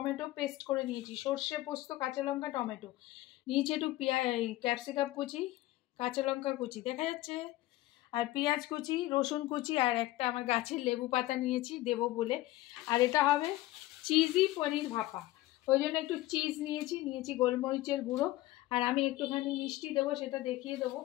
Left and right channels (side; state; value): right; quieter; 17.0 dB